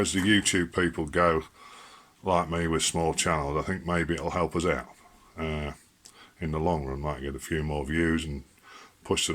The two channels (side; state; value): both; identical; correlation 1.00